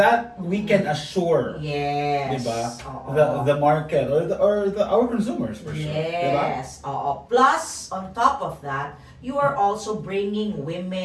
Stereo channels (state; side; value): identical; both; correlation 1.00